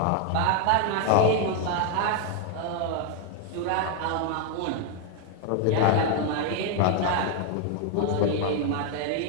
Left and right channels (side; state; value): both; different; correlation 0.01